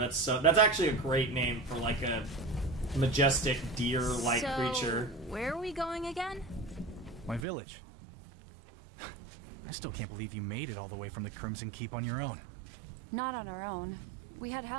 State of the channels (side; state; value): left; drops out; at 7.5 s